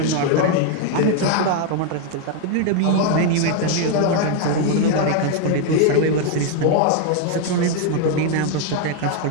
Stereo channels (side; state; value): both; different; correlation 0.00